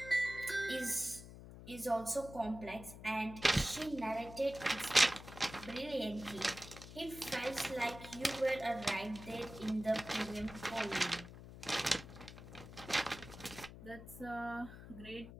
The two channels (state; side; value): noise; left; hum, 14 dB below the sound